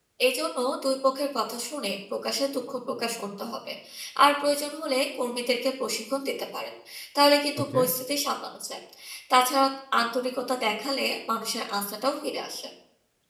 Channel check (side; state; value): both; identical; correlation 1.00